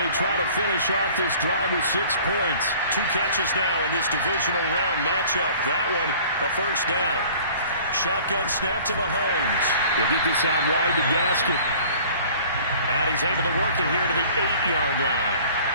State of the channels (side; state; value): both; inverted; correlation -0.49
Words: try to finish off this drive with 6 points. 2 catches now in this divisional round matchup. That one, a 1st down. Shotgun snap to Mahomes. They get this out wide to Gaskin. And he's able to work it here to the 8-yard line.